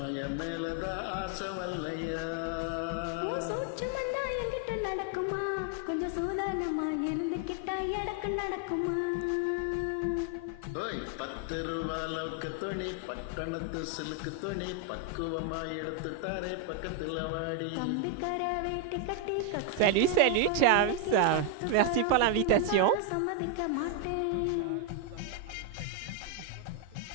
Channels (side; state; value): both; different; correlation 0.01